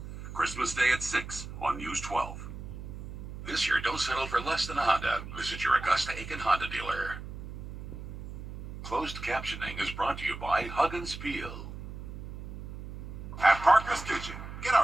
Christmas Day at 6 on News 12. This year, don't settle for less than a Honda. Visit your Augusta-Aiken Honda dealer. Closed captioning is brought to you by Hug and Spiel. At Parker's Kitchen, get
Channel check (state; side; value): noise; right; hum, 10 dB below the sound